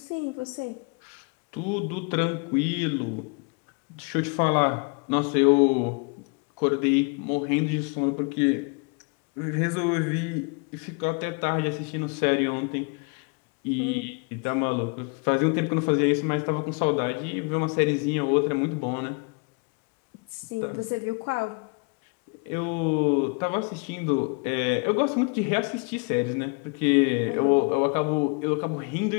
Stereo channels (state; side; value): quieter; right; 32.7 dB